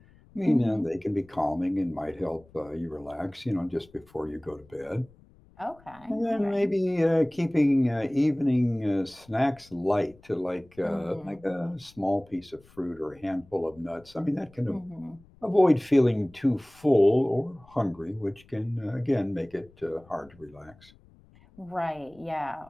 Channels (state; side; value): noise; left; rumble, 27 dB below the sound